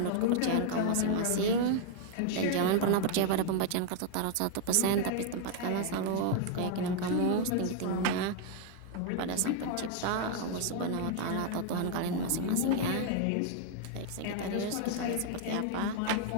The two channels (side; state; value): both; different; correlation 0.00